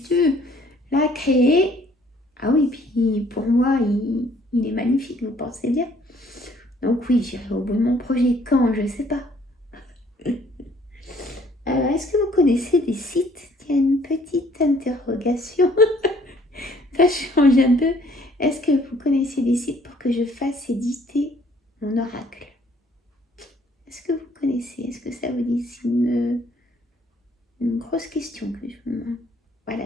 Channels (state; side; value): normal; both; correlation 0.61